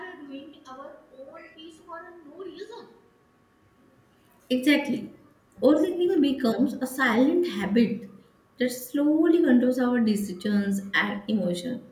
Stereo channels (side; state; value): both; identical; correlation 1.00